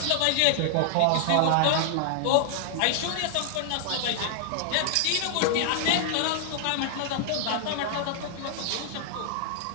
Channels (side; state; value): both; different; correlation 0.00